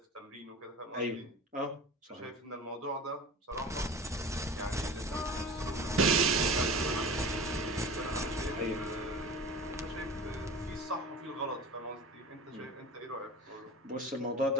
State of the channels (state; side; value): normal; both; correlation 0.36